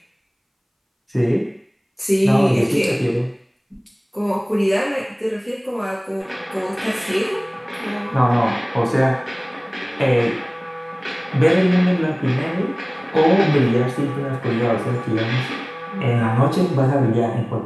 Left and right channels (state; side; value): identical; both; correlation 1.00